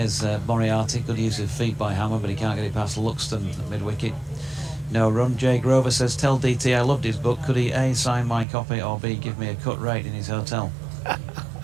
Moriarty, good use of feet by Hammond, but he can't get it past Luxton at mid-wicket. No run. Jay Grover says, tell DT I loved his book. Could he A, sign my copy, or B, give me a cut rate in his hotel?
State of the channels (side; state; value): left; drops out; at 8.5 s